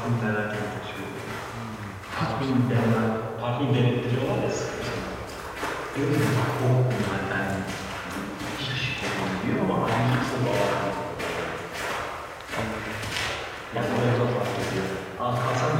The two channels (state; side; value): identical; both; correlation 1.00